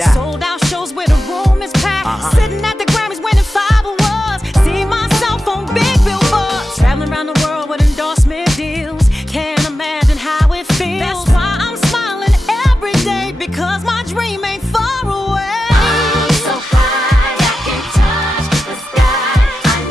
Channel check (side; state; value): both; normal; correlation 0.91